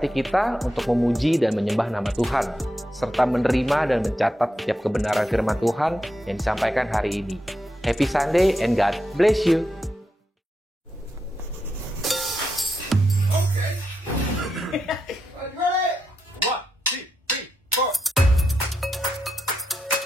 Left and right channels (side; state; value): both; normal; correlation 0.85